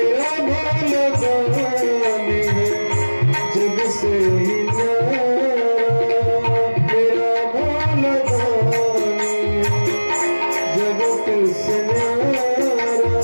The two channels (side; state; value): both; inverted; correlation -1.00